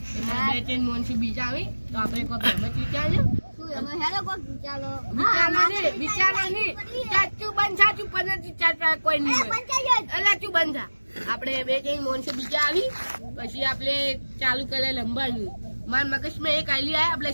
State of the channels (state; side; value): inverted; both; correlation -1.00